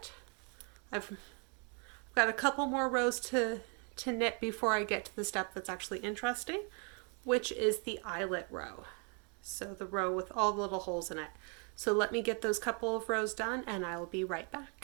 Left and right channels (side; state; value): left; quieter; 37.2 dB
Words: I've got a couple more rows to knit before I get to the step that's actually interesting, which is the eyelet row. So the row with all the little holes in it. So let me get those couple of rows done and I will be right